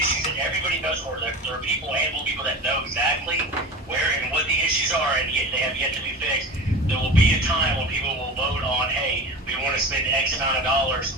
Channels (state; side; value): normal; both; correlation 0.32